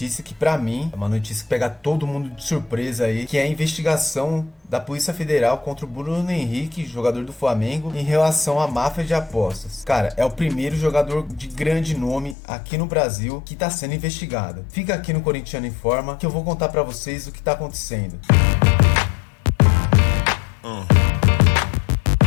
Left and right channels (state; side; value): drops out; right; at 12.4 s